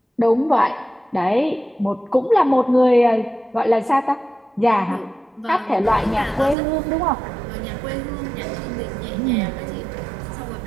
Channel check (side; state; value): left; drops out; at 6.6 s